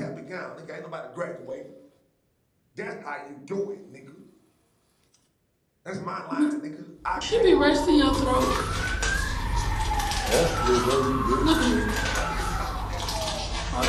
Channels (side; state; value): both; identical; correlation 1.00